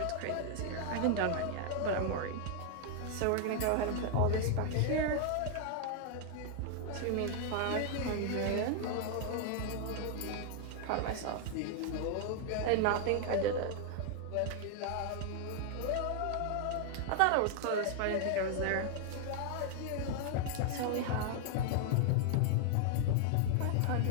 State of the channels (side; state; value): both; different; correlation 0.00